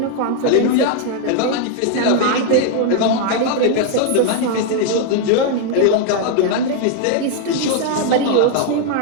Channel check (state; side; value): different; both; correlation 0.00